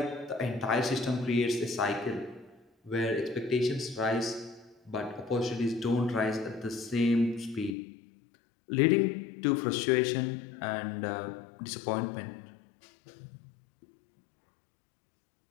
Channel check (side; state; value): right; drops out; at 7.8 s